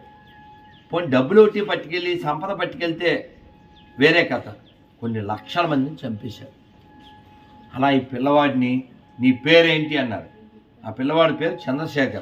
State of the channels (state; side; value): identical; both; correlation 1.00